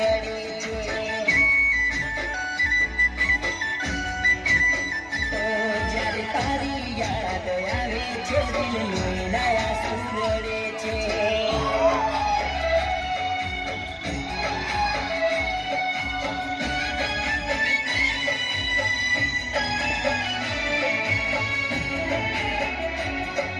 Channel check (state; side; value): identical; both; correlation 1.00